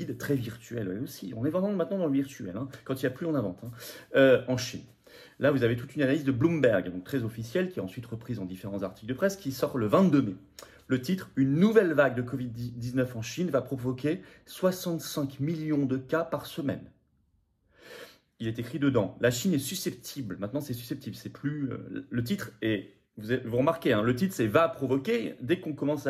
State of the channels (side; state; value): both; identical; correlation 1.00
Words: très virtuelle elle aussi. On est vraiment maintenant dans le virtuel. Quand il n'y a plus, on invente. En Chine. Là, vous avez toute une analyse de Bloomberg, donc très officielle, qui est ensuite reprise en différents articles de presse, qui sort le 22 mai. Le titre, « Une nouvelle vague de Covid-19 en Chine va provoquer 65 millions de cas par semaine. » Il est écrit dedans, la Chine est susceptible, maintenant c'est susceptible, c'est plus... le titre est, vous remarquez, le titre c'est « va provoquer », dès qu'on commence